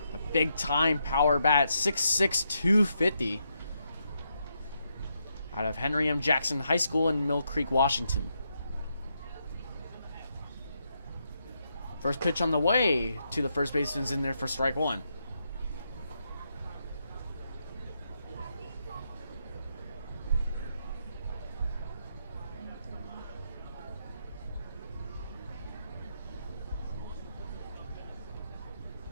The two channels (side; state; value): both; inverted; correlation -0.80